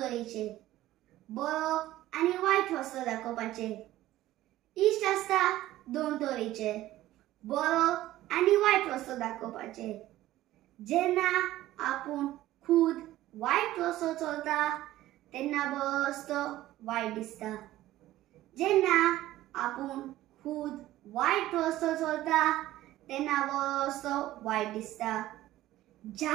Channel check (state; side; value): quieter; left; 15.2 dB